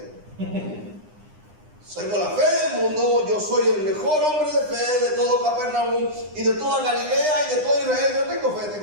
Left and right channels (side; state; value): left; late; 9.8 ms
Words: Soy con la fe del mundo. Yo soy el mejor hombre de fe de todo Capernaum y de toda Galilea y de todo Israel. Yo tengo fe.